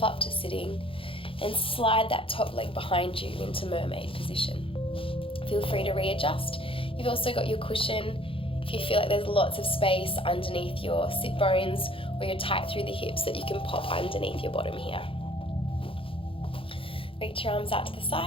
up to sitting and slide that top leg behind you into mermaid position. Feel free to readjust. You've also got your cushion. If you feel like there's lots of space underneath your sit bones or you're tight through the hips, that you can pop underneath your bottom here. Reach your arms out to the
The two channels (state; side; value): late; right; 0.26 ms